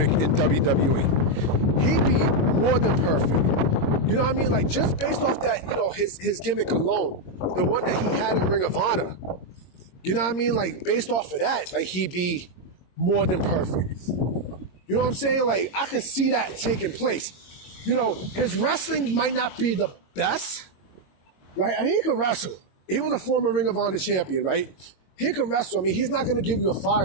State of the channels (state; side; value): late; right; 22 ms